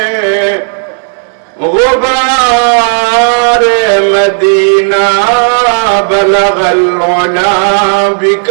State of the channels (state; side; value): silent; left; digital silence